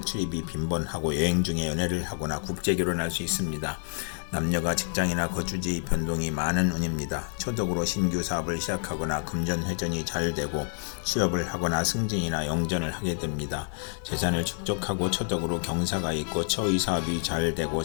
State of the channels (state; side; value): silent; right; 59 dB below the other